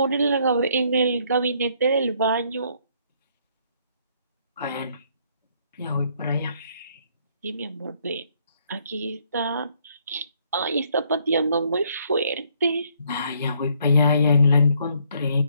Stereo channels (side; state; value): both; inverted; correlation -0.67